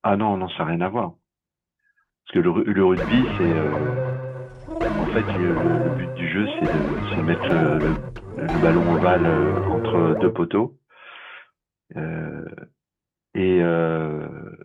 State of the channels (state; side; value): identical; both; correlation 1.00